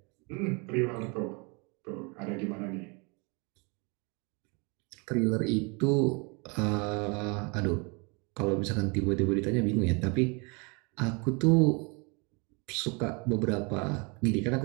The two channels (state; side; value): quieter; left; 31.3 dB